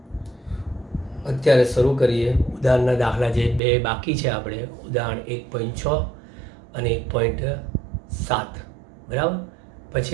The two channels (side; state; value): left; drops out; at 3.6 s